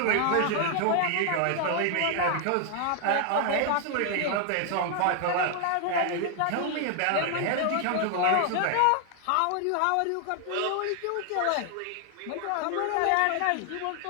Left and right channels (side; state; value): both; different; correlation 0.00